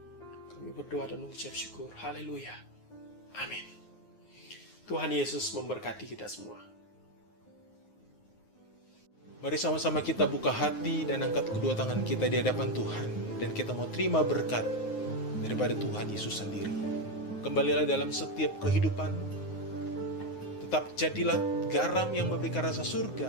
kami berdoa dan mengucap syukur. Haleluya. Amin. Tuhan Yesus memberkati kita semua. Mari sama-sama kita buka hati dan angkat kedua tangan kita di hadapan Tuhan. Dan kita mau terima berkat daripada Tuhan Yesus sendiri. Kembalilah dalam setiap kehidupan. Tetap jadilah garam yang memberikan rasa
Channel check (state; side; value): late; right; 9.5 ms